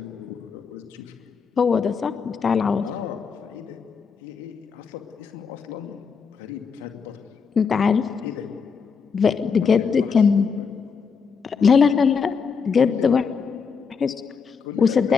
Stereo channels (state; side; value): quieter; right; 5.8 dB